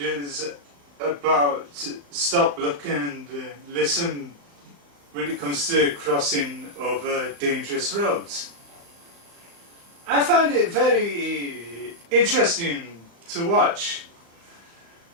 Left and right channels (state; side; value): late; left; 35 ms